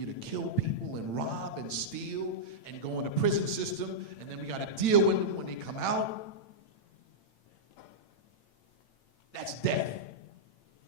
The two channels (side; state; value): right; late; 8.9 ms